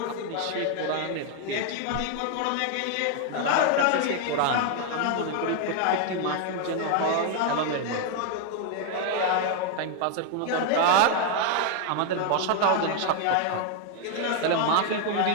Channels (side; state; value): both; different; correlation 0.00